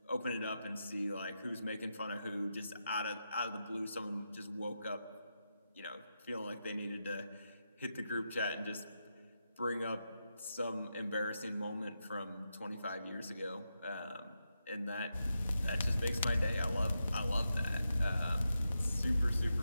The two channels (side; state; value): both; inverted; correlation -0.87